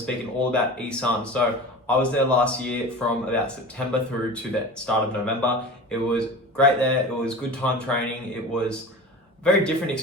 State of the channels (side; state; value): both; normal; correlation 0.34